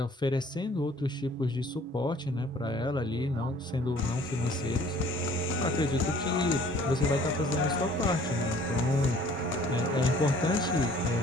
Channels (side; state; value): both; normal; correlation 0.54